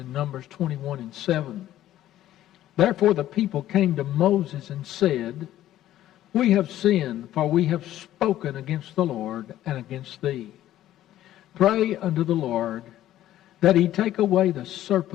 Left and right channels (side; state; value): right; quieter; 13.2 dB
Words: Numbers 21:7. Therefore the people came to Moses and said, We have sinned, for we have spoken against the Lord and against thee. Pray unto the Lord that he take away the